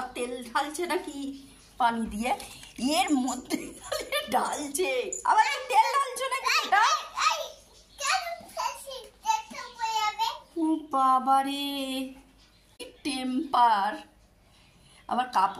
তেল ঢালছে নাকি পানি দিয়ে? এর মধ্যে ঢালছে আবার, তেল ঢালছো নাকি? বাবারে টেম্পার। আবার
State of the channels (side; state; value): both; identical; correlation 1.00